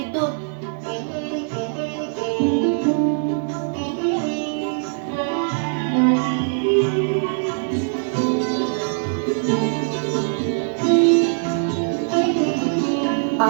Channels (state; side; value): silent; left; digital silence